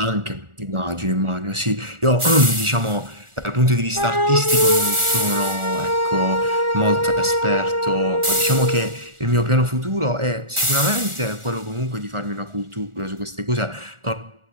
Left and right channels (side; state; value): left; late; 1.4 ms